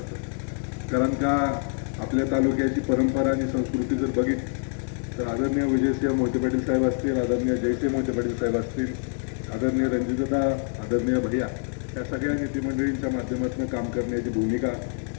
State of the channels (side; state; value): right; silent; 57 dB below the other